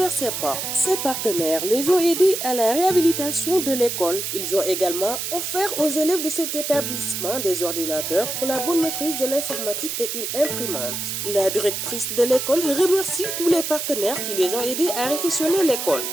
ses portes. Ces partenaires les ont aidés à la réhabilitation de l'école. Ils ont également offert aux élèves de cet établissement des ordinateurs pour la bonne maîtrise de l'informatique et une imprimante. La directrice de l'école remercie tous les partenaires qui les ont aidés à réfectionner l'école.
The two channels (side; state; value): right; noise; hiss, 4 dB below the sound